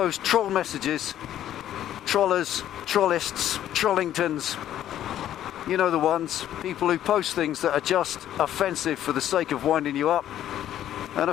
troll messages, trollers, trollists, trollingtons, you know the ones, people who post things that are just offensive for the sake of winding you up and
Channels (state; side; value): quieter; right; 11.6 dB